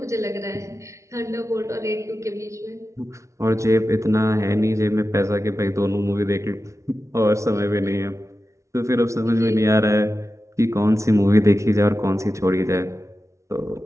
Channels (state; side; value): late; left; 0.14 ms